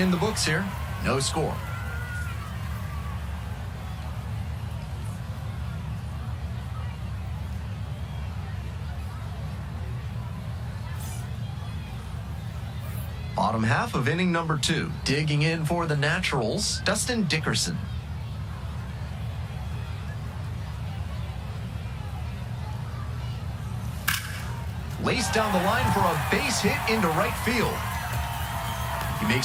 the books here, no score. Bottom half of inning number 2. Digging in for the Naturals, Dustin Dickerson. Laced down the line for a base hit into right field. He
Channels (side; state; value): both; identical; correlation 1.00